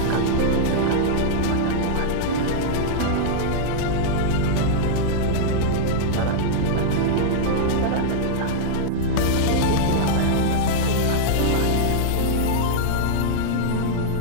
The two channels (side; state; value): both; different; correlation -0.02